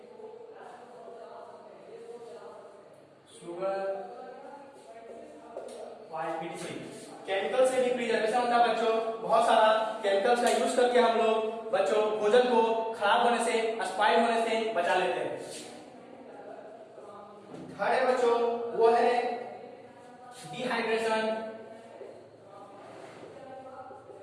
Sugar, oil, etc। Chemical से भी प्रिजर्वेशन होता है बच्चों, बहुत सारा केमिकल्स का यूज करके हम लोग बच्चों भोजन को खराब होने से, स्पॉइल होने से बचा लेते हैं। थर्ड है बच्चों वो है डिहाइड्रेशन।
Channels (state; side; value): identical; both; correlation 1.00